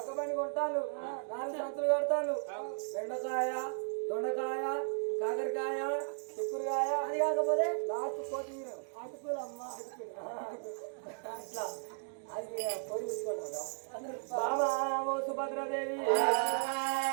పని కొట్టాను 4 సంచులు కడతాను బెండకాయ దొండకాయ కాకరకాయ చిక్కుడుకాయ అది కాకపోతే లాస్ట్ కొత్తిమీర అటుకులు అమ్మ అటుకులు అట్లా అది పొడి బాబా ఓ సుభద్రాదేవి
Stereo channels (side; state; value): left; silent; digital silence